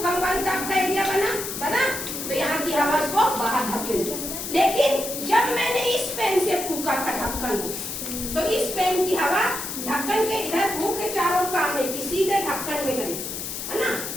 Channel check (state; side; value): noise; left; hiss, 6 dB below the sound